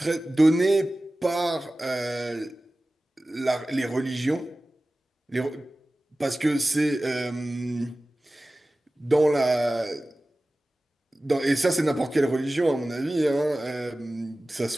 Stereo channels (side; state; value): both; normal; correlation 0.96